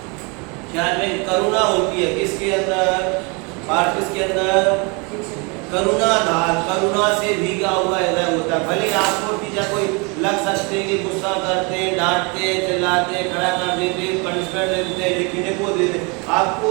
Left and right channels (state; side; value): quieter; left; 30.8 dB